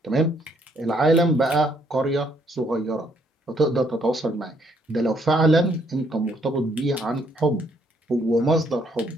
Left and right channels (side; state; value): both; normal; correlation 0.69